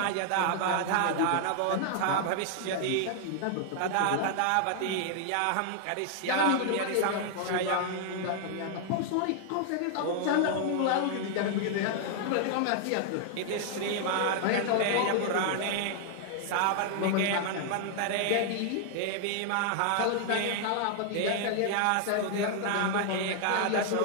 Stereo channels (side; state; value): both; different; correlation 0.00